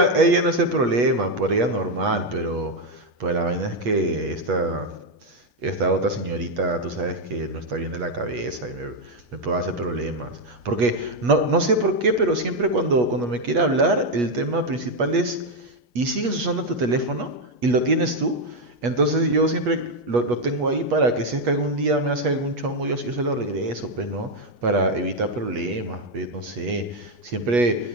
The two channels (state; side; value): late; left; 8.3 ms